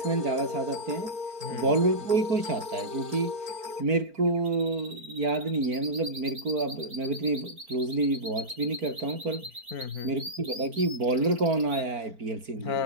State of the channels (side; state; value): left; late; 4.4 ms